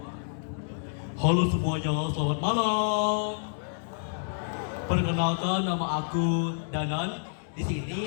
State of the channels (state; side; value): silent; right; digital silence